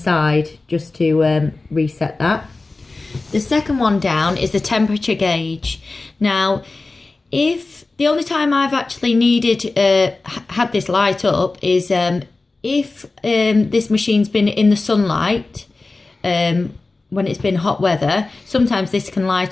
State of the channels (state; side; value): quieter; right; 3.5 dB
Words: just to reset that. The second one down is the temperature gauge. Now, if the only time I've actually had this light up is if this machine's been in the sunlight, when it's been hot weather, sometimes this can